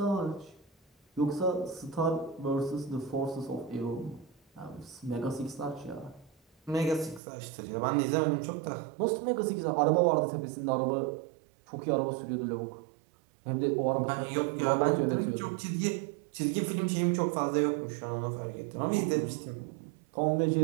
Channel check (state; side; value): drops out; left; at 7.2 s